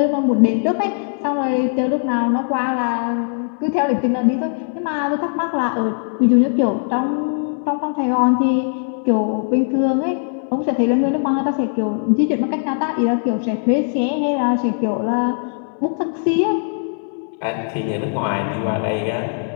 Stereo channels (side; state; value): right; silent; 64 dB below the other